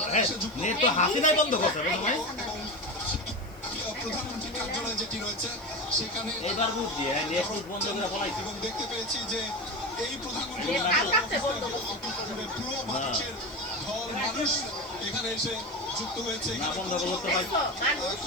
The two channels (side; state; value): left; noise; hiss, 27 dB below the sound